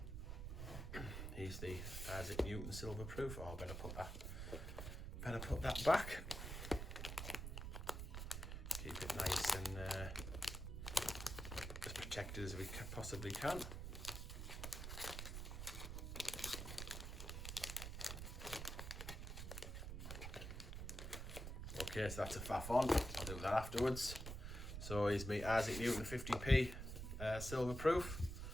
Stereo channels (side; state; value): right; noise; rumble, 6 dB below the sound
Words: here's the Isaac Newton silver proof. Oh, I better put that back. Keep it nice and as protected as we possibly can. Okay, so that's a faff on. I'll do that afterwards. So here's me Isaac Newton 50p silver proof.